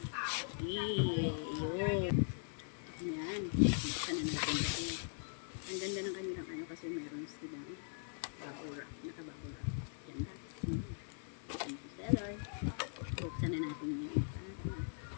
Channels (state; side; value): silent; right; 51 dB below the other